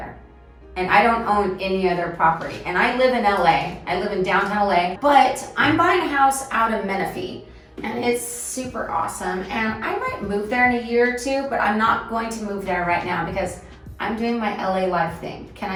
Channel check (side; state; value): both; identical; correlation 1.00